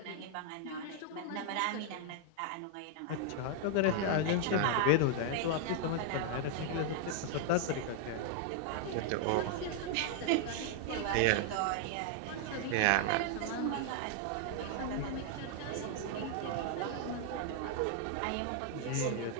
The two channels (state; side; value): different; both; correlation 0.00